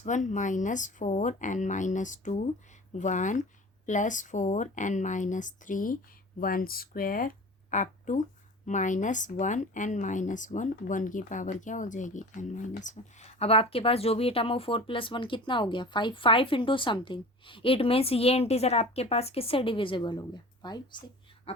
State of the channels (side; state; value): both; normal; correlation 0.39